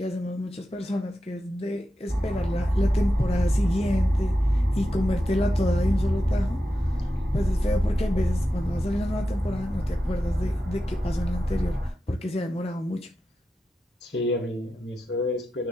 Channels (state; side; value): normal; both; correlation 0.91